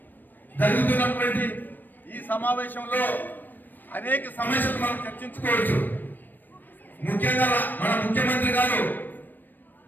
జరుగుతున్నటువంటి ఈ సమావేశంలో అనేక సమస్యలు మనం చర్చించుకోవచ్చు. ముఖ్యంగా మన ముఖ్యమంత్రి గారు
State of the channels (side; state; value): right; late; 0.091 ms